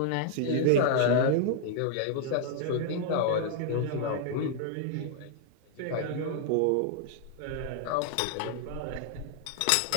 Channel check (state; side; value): different; both; correlation 0.00